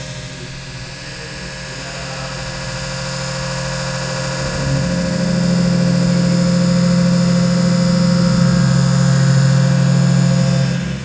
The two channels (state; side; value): identical; both; correlation 1.00